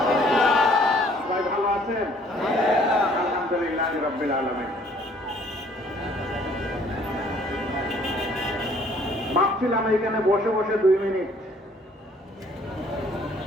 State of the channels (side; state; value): both; normal; correlation 0.59